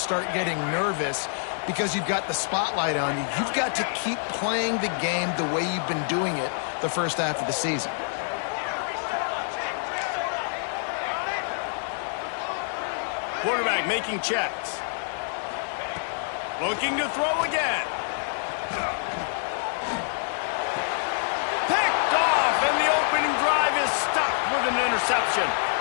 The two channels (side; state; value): right; silent; digital silence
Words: getting nervous because you've got the spotlight on you. You've got to keep playing the game the way you've been doing it the first half of the season. Quarterback making checks. Looking to throw again. Picked off, and the opening drive is stopped with an interception.